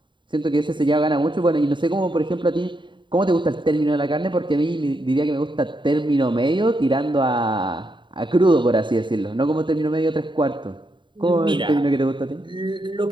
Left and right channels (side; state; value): left; late; 0.23 ms